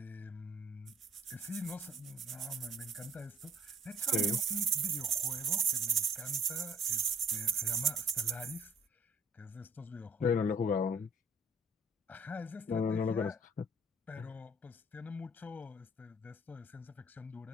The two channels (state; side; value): normal; both; correlation 0.59